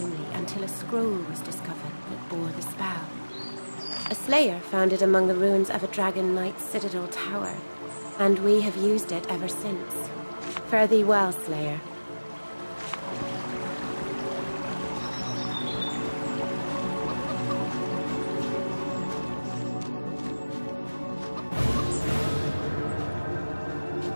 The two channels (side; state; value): both; inverted; correlation -1.00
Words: until a scroll was discovered that bore the spell. A slayer found it among the ruins of a Dragon Knight Citadel tower, and we have used it ever since. Fare thee well, Slayer.